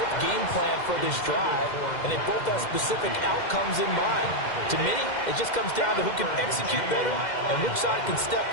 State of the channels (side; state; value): right; late; 2.1 ms